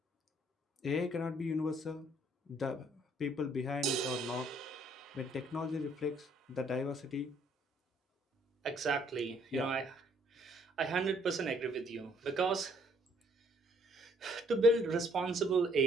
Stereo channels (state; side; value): normal; both; correlation 0.64